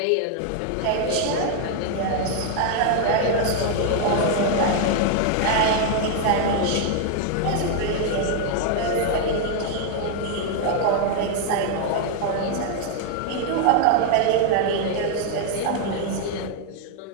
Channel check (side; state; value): both; different; correlation 0.00